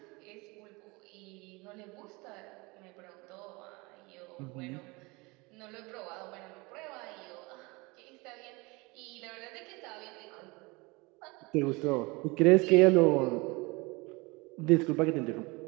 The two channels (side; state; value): left; quieter; 25.5 dB